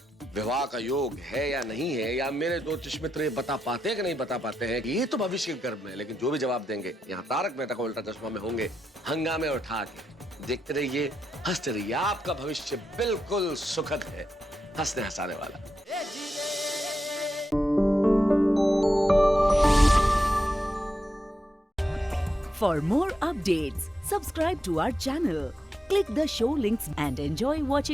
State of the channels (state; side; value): normal; both; correlation 0.86